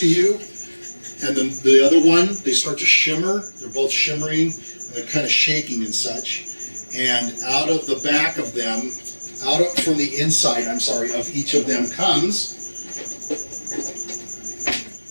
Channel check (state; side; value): inverted; both; correlation -1.00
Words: you and then the other one, they start to shimmer. They're both shimmering and they're kind of shaking and such. And out of the back of them, from the inside, of each of them comes,